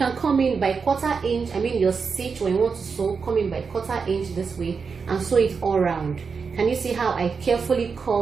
come in by 1/4 inch, your stitch when you want to sew, come in by 1/4 inch this way and sew it all around. Can you see how I carefully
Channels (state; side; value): quieter; left; 5.4 dB